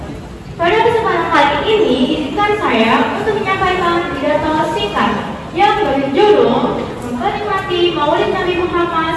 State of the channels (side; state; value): both; identical; correlation 1.00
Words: Pada kesempatan kali ini, izinkan saya untuk menyampaikan pidato singkat yang berjudul Memperingati Maulid Nabi